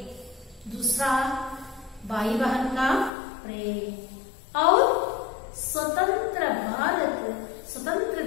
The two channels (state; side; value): drops out; right; at 3.1 s